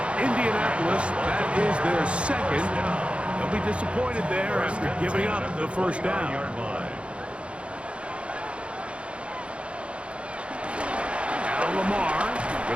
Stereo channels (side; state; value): left; late; 0.059 ms